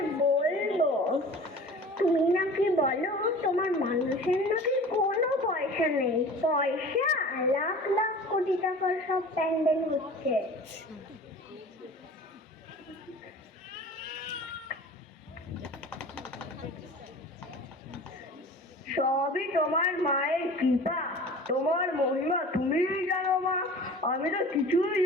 বলবো। তুমি নাকি বলো তোমার মানুষের নাকি কোনো পয়সা নেই, পয়সা লাখ লাখ কোটি টাকার সব প্যান্ডেল হচ্ছে। সবই তোমার মায়ের কৃপা, তোমার মহিমা তুমিই জানো মা, আমি তো কিছুই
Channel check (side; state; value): both; normal; correlation 0.41